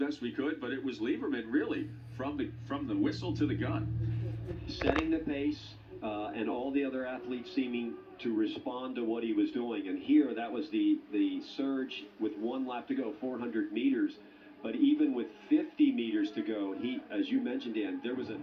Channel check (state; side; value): identical; both; correlation 1.00